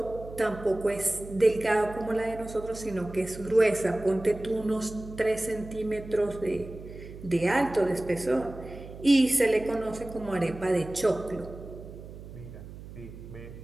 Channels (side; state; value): right; noise; hum, 14 dB below the sound